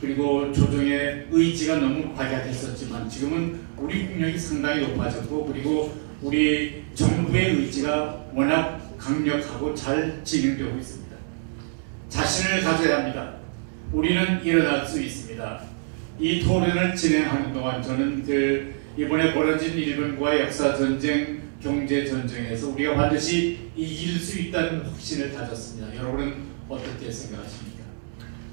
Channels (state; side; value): silent; left; 61 dB below the other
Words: 그리고 조정의 의지가 너무 박약했었지만 지금은 우리 국력이 상당히 높아졌고, 그리고 우리 정부의 의지가 워낙 강력하고 잘 진행되고 있습니다. 자신을 가져야 합니다. 우리는 일어날 수 있습니다. 이 토론을 진행하는 동안 저는 이번에 벌어진 일본과의 역사 전쟁, 경제 전쟁에서 우리가 반드시 이길 수 있다는 확신을 가졌습니다. 여러분은 어떻게 생각하십니까?